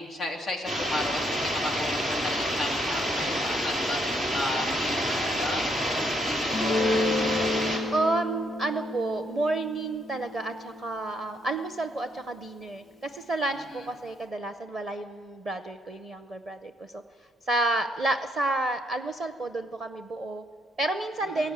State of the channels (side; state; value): both; normal; correlation 0.73